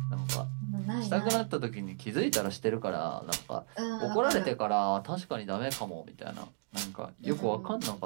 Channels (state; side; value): silent; left; digital silence